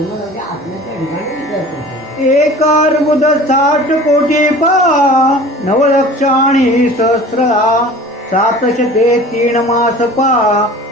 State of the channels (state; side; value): normal; both; correlation 0.43